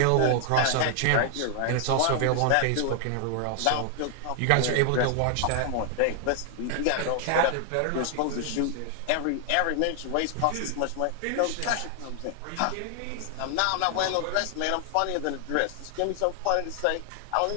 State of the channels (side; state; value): both; different; correlation 0.00